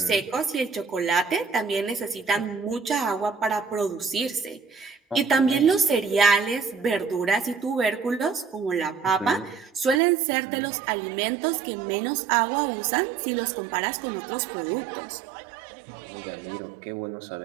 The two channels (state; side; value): drops out; left; at 10.0 s